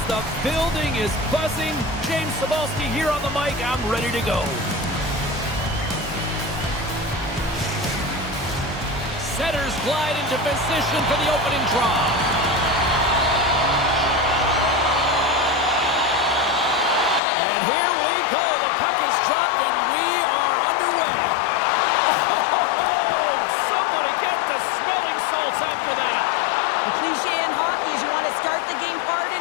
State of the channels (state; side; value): drops out; right; at 17.2 s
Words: The building is buzzing. James Cebulski here on the mic. I'm ready to go. Setters glide into position for the opening draw. And here we go. The puck is dropped, and we are underway. Oh, somebody get the smelling salts after that. The cliche in hockey is you want to start the game hard